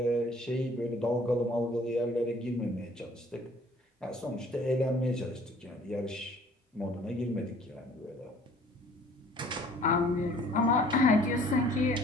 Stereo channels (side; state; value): both; normal; correlation 0.55